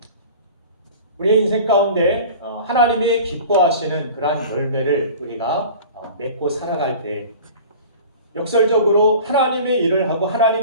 우리의 인생 가운데 하나님이 기뻐하시는 그러한 열매를 우리가 맺고 살아갈 때 역설적으로 하나님의 일을 하고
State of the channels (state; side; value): inverted; both; correlation -0.40